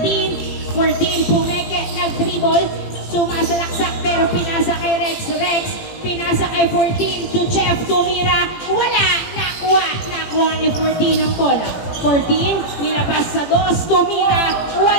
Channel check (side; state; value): right; late; 18 ms